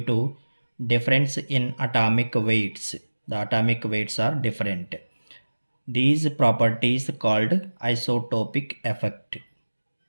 difference in atomic weights. The atomic weights are different. These properties called isotopic effect.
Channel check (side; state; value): both; inverted; correlation -1.00